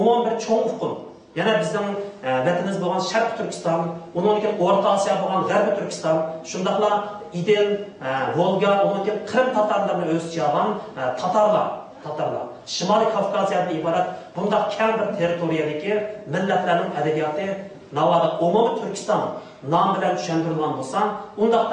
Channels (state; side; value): identical; both; correlation 1.00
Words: bir cho'ng uqum, yana bizning vatanimiz bo'lgan Sharq Turkiston, undan keyin O'rta Osiyo bo'lgan G'arbiy Turkiston, shundaqla Idil, Volga, undan keyin Qrim tatarlarini o'z ichiga olgan Tatarlar, Shimoliy Kavkaziyadan iborat bunday kam bir territoriyadagi millatlarning adabiyoti navoda umumiy Turkiston nom bilan tushuntirilgan bo'lsa,